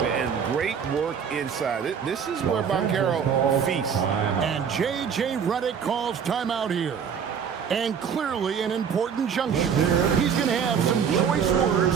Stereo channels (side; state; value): left; quieter; 7.2 dB